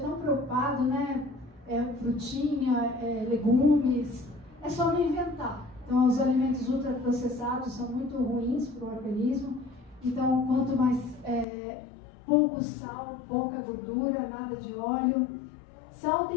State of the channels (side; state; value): right; drops out; at 11.5 s